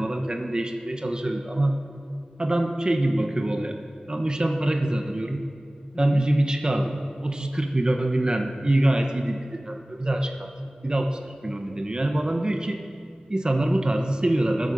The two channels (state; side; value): normal; both; correlation 0.98